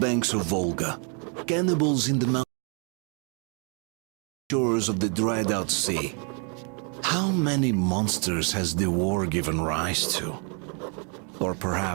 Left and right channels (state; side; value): quieter; left; 37.6 dB